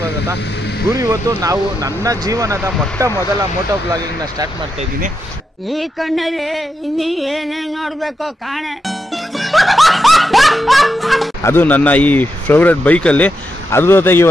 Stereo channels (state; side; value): normal; both; correlation 0.85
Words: ಗುರು, ಇವತ್ತು ನಾವು ನನ್ನ ಜೀವನದ ಮೊದಲ ಮೋಟೋ ಬ್ಲಾಗಿಂಗ್ನ ಸ್ಟಾರ್ಟ್ ಮಾಡ್ತಾ ಇದ್ದೀನಿ. ಈ ಕಣ್ಣಲ್ಲಿ ಇನ್ನೀ ಏನೇನು ನೋಡ್ಬೇಕೋ ಕಾಣೆ. ಅದು ನನ್ನ ಈ ಫೇವ್ರೆಟ್ ಬೈಕಲ್ಲಿ. ಅದ್ರ ಜೊತೆಗೆ